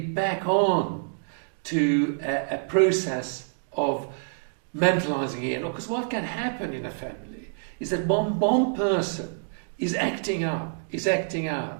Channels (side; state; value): left; silent; digital silence